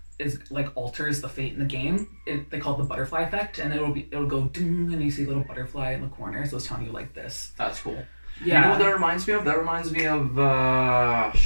is like alters the fate in the game, they call it the butterfly effect, and it'll go ding, and you see a little butterfly in the corner, so it's telling you like this. That's cool. Yeah. You know what that reminds me of? That reminds me of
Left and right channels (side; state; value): both; inverted; correlation -1.00